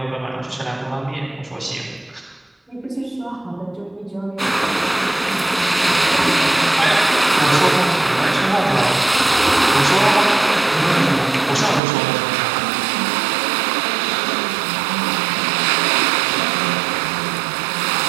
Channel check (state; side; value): drops out; left; at 11.8 s